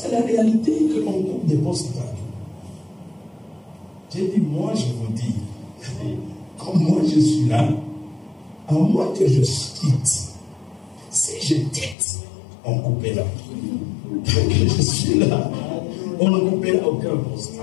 que la réalité est qu'on coupe des postes partout. J'ai dit, moi je vous dis, comme moi je suis là, à moins que je quitte, si je quitte, on coupera. Tant que je suis là, on ne coupera aucun poste.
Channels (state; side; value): drops out; right; at 12.0 s